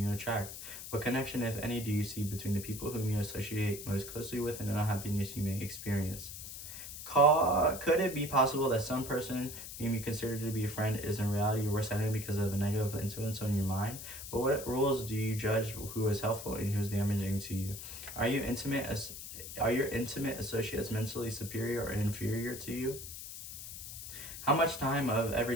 attract? What connection, if any, do you see between the people whom you associate most closely with and the unhappiness you may experience? Could it be possible that some person whom you consider to be a friend is in reality your worst enemy because of the negative influence on your mind? But what rules do you judge who is helpful and who is damaging to you? Are you intimate as are your intimate associates mentally superior or inferior to you? How much time of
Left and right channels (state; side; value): noise; left; hiss, 10 dB below the sound